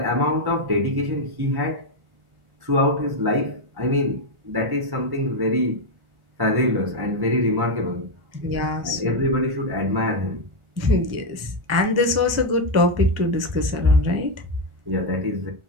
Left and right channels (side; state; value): left; late; 1.4 ms